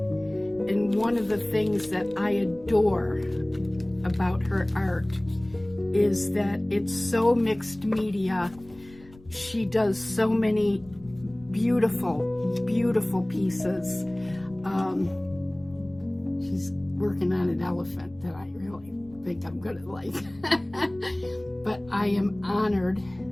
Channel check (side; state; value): left; noise; rumble, 23 dB below the sound